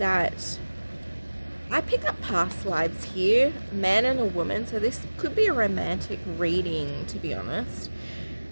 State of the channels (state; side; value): inverted; both; correlation -1.00